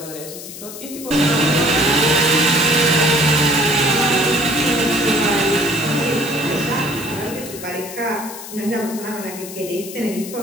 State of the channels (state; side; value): noise; left; hiss, 12 dB below the sound